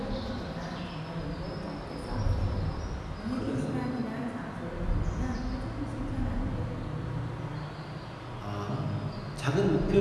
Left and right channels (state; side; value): identical; both; correlation 1.00